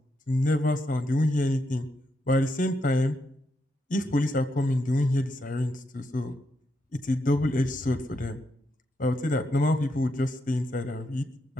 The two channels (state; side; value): normal; both; correlation 0.81